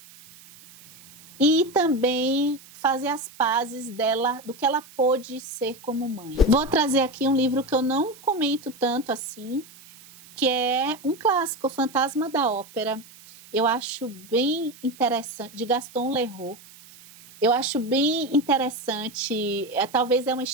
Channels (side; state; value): right; noise; hiss, 22 dB below the sound